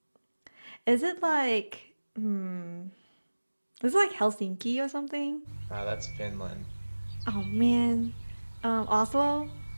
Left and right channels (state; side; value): inverted; both; correlation -1.00